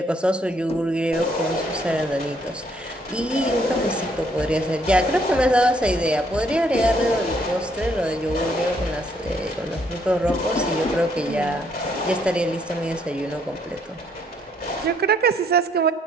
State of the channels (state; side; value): normal; both; correlation 0.69